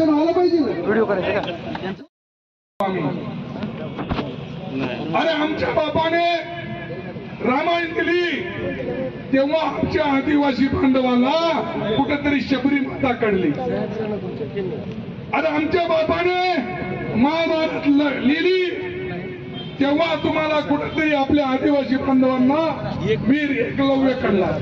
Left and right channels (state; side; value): identical; both; correlation 1.00